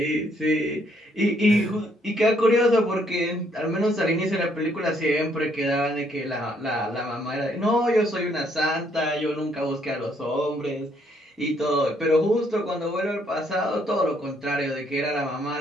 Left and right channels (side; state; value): both; normal; correlation 0.70